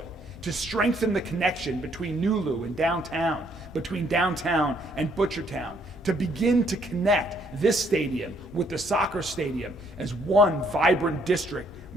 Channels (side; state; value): both; normal; correlation 0.67